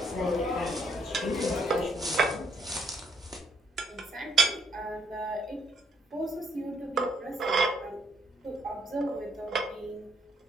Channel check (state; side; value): normal; both; correlation 0.70